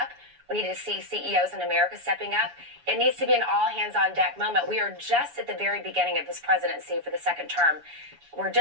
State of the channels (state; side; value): late; left; 7.1 ms